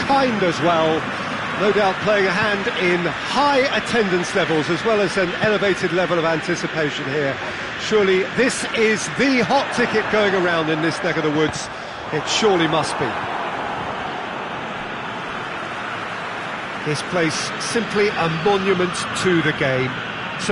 as well. No doubt playing a hand in high attendance levels as well as an elevated level of anticipation here. Surely this is the hot ticket going around in this neck of the woods. It surely must be. This place simply a monument to the game.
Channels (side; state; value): both; identical; correlation 1.00